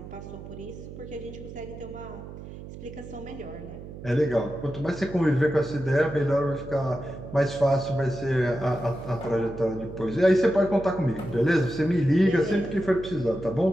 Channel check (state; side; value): noise; right; hum, 13 dB below the sound